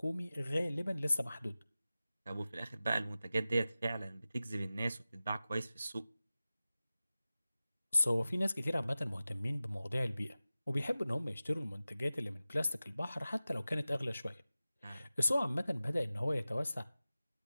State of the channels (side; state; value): both; inverted; correlation -0.96